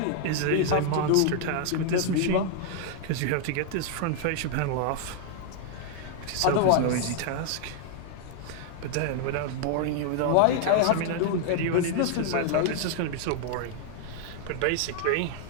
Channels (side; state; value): both; different; correlation 0.00